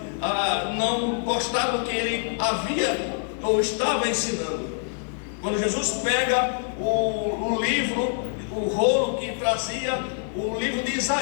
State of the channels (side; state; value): right; silent; digital silence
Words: não gostaram do que ele havia ou estava ensinando. Quando Jesus pega o livro, o rolo que trazia o livro de